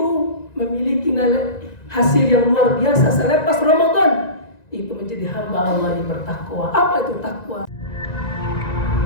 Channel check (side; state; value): right; late; 1.9 ms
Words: memiliki hasil yang luar biasa selepas Ramadan. Itu menjadi hamba Allah yang bertakwa. Apa itu takwa?